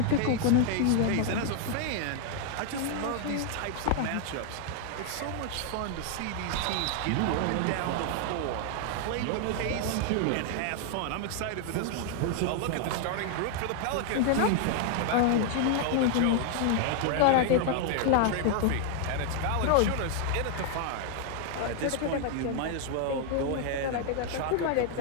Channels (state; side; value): different; both; correlation 0.00